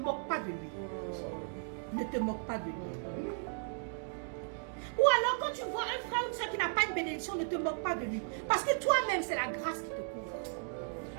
pas de lui. Ne te moque pas de lui. Ou alors quand tu vois un frère ou une soeur qui n'a pas une bénédiction, ne te moque pas de lui. Parce que toi-même, c'est la grâce qui te couvre.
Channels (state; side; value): silent; left; 54 dB below the other